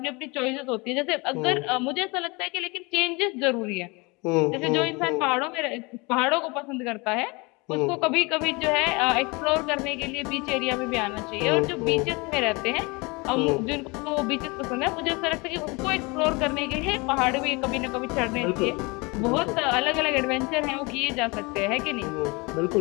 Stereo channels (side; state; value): right; quieter; 26.9 dB